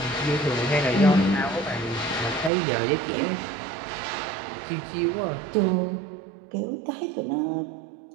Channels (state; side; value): drops out; left; at 2.5 s